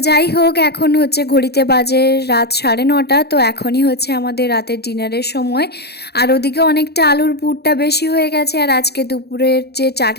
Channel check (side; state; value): right; late; 0.47 ms